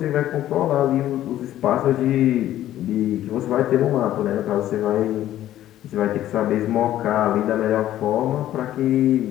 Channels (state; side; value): quieter; right; 12.9 dB